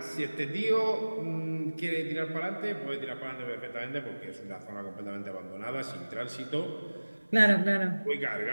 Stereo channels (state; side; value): inverted; both; correlation -1.00